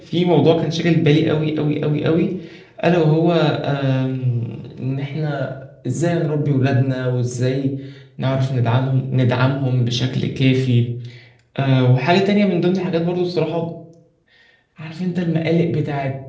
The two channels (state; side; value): identical; both; correlation 1.00